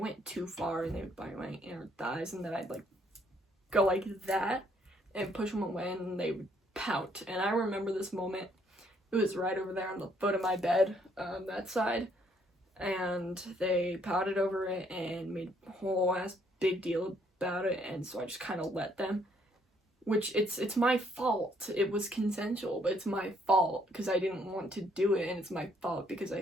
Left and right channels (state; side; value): normal; both; correlation 0.68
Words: too far, and they would bite my inner thighs, and then I'd like go like that and push them away, and they would pout. And I remember this moment. It was right over there on the foot of my bed, that side, and they pouted over it and made a whole ass big deal about it, and so I just kind of let them. Which, it's my fault. It was consensual, but it's my fault because I didn't want to do it, and it's my fault because